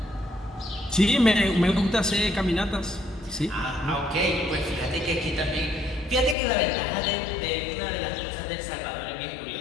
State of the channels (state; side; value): drops out; right; at 6.4 s